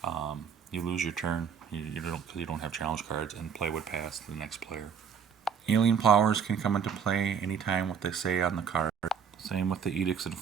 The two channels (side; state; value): left; quieter; 7.1 dB